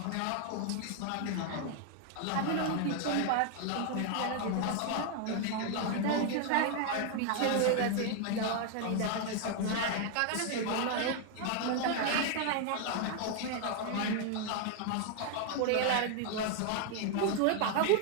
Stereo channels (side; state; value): both; different; correlation 0.00